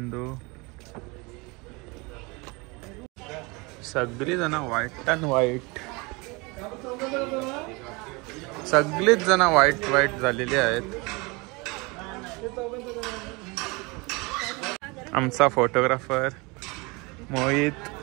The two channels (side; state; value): left; quieter; 26.7 dB